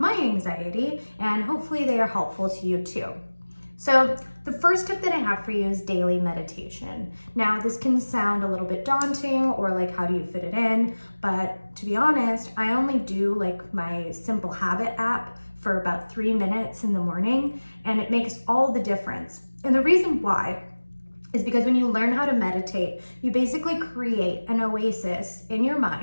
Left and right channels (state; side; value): inverted; both; correlation -1.00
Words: anxiety, and hopefully they are helpful to you too. So the first tip that I have for you is daily meditation. Now this can sound a little bit daunting or like how do you fit it in, but to be honest, I only do like my Simple Habit app for about 3 minutes in the morning, and it makes all the difference. And the reason why is because when you learn how to meditate, you basically create an oasis in your